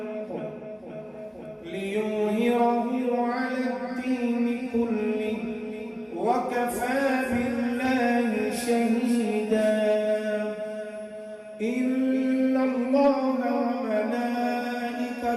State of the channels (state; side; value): identical; both; correlation 1.00